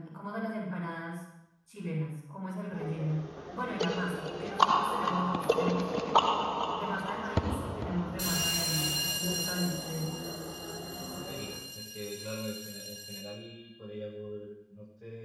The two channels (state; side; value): identical; both; correlation 1.00